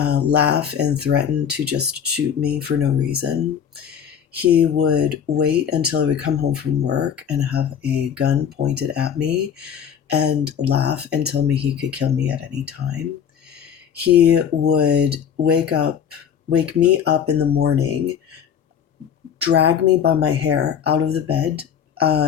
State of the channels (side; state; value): right; quieter; 8.2 dB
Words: and threaten to just shoot me for no reason. He would wait until I would come home from work and have a gun pointed at me and laugh and tell me he could kill me at any time. He would wake me up in the morning, drag me by my hair out of the bed